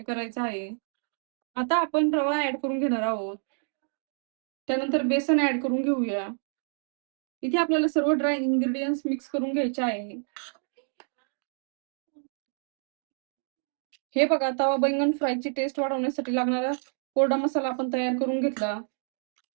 करायचं आहे. आता आपण रवा ऍड करून घेणार आहोत. त्यानंतर बेसन ऍड करून घेऊया. इथे आपल्याला सर्व ड्राय इन्ग्रेडियंट्स मिक्स करून घ्यायचे आहे. हे बघा, तवा बैंगन फ्रायची टेस्ट वाढवण्यासाठी लागणारा कोरडा मसाला आपण तयार करून घेतला.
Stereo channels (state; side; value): silent; left; 59 dB below the other